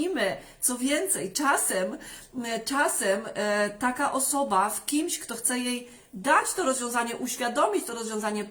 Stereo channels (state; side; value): identical; both; correlation 1.00